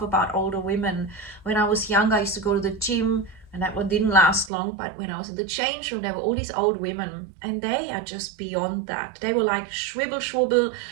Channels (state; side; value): drops out; left; at 4.5 s